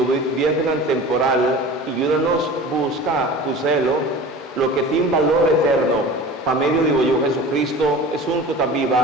bien temporal, y ayúdanos a buscar, cuselo, lo que tiene valor eterno, para medio digo yo Jesucristo, es un que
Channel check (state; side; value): normal; both; correlation 0.38